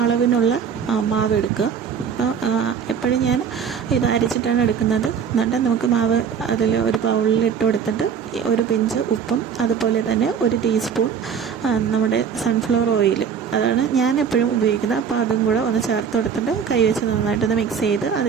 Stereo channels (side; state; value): left; quieter; 7.2 dB